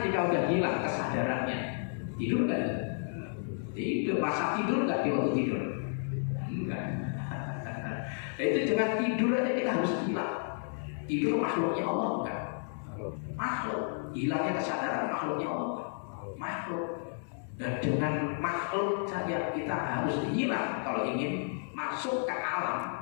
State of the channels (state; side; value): silent; right; digital silence